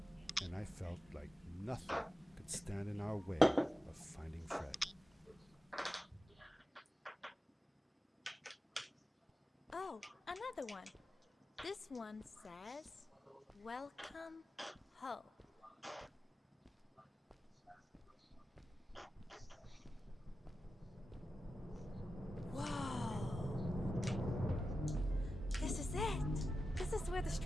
and I felt like nothing could stand in our way of finding Fred. Oh, another one. This one says, "Welcome home." Whoa! This is it! This is where the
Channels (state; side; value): normal; both; correlation 0.92